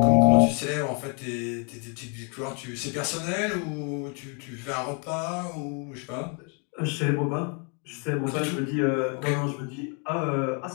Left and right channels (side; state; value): right; quieter; 37.1 dB